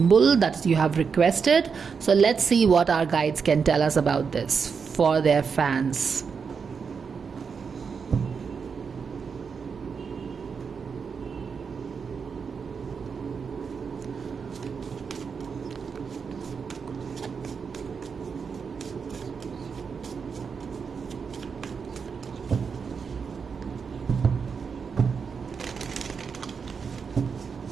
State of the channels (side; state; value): left; quieter; 5.9 dB